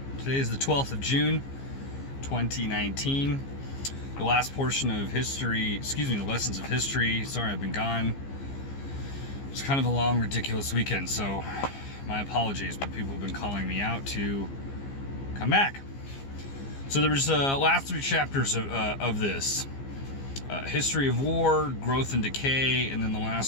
Today is the 12th of June, 2019. The last portion of history, the lessons of history. Sorry, I've been gone. It's kind of a long, ridiculous weekend, so my apologies, but people have been calling me out to come back. So there was last three chapters of this. History of war, growth and decay, and then the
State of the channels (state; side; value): late; right; 15 ms